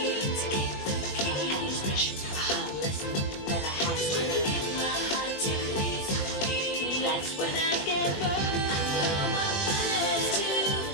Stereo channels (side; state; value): right; late; 20 ms